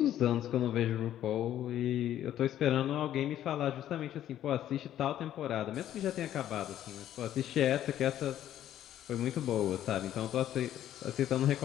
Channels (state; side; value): quieter; right; 11.7 dB